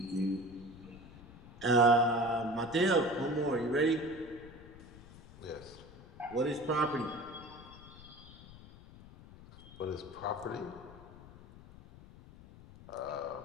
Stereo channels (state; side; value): noise; left; rumble, 18 dB below the sound